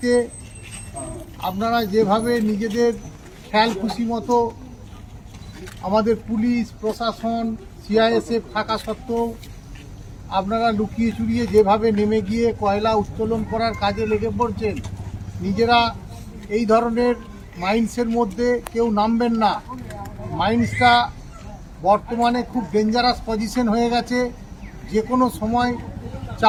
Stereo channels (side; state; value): both; identical; correlation 1.00